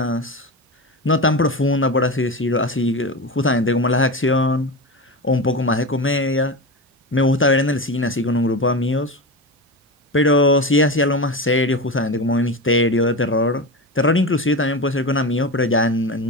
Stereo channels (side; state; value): both; normal; correlation 0.22